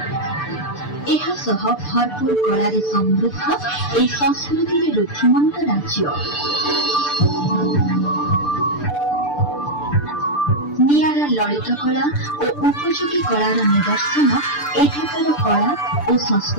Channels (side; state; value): right; late; 6.8 ms